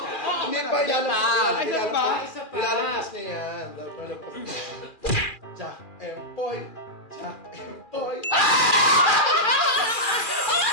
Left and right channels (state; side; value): late; right; 2.4 ms